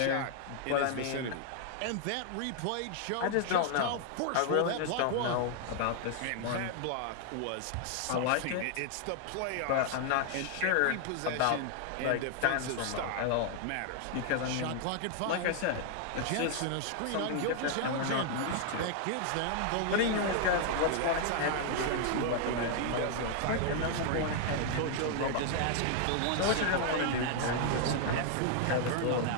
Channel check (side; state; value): both; different; correlation 0.00